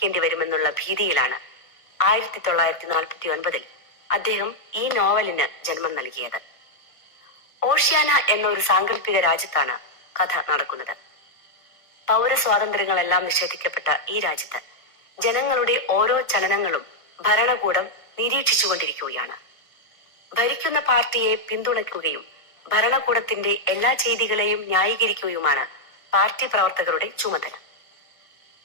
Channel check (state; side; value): late; right; 1.4 ms